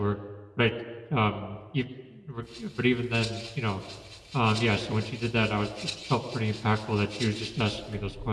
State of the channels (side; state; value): both; identical; correlation 1.00